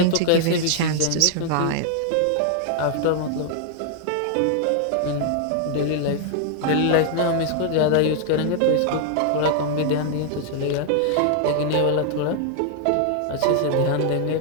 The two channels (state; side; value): different; both; correlation 0.00